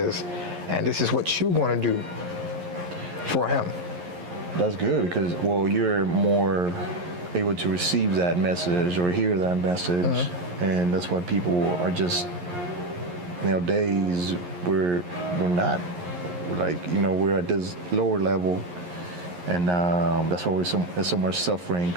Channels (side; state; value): left; late; 11 ms